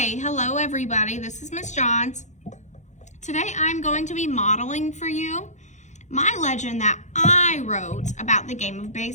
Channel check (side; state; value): right; late; 0.34 ms